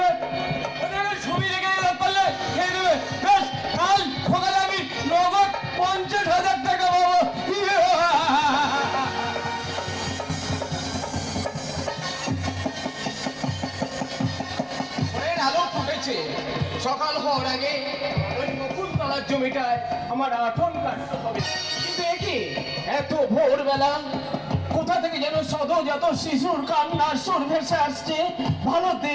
ছবি রেখে পারলে খেয়ে দেবে। বেশ, কাল সকালে আমি নগদ 50,000 টাকা পাবো। আলো ফুটেছে, সকাল হওয়ার আগে ওই মুকুলতলার জমিটায় আমার আঠন কাটতে হবে। কিন্তু একে এত ভোরবেলা কোথা থেকে যেন সদ্যজাত শিশুর কান্নার সুর ভেসে আসছে, ভালো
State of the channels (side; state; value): both; identical; correlation 1.00